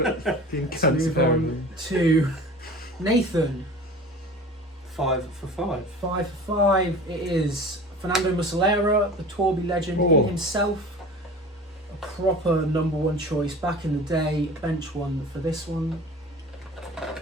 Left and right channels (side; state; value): both; normal; correlation 0.39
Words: fucking Let's cunts move on to Nathan. 5 for 5. 5 for 5. It is Fernando Muslera, the Torbi legend Oh. himself. A proper number 1 choice back in the day. Bench one for this one.